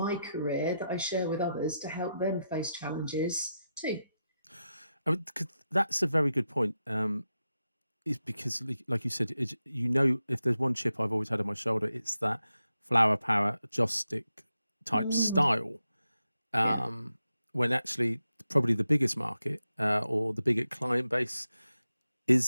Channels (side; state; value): both; inverted; correlation -0.88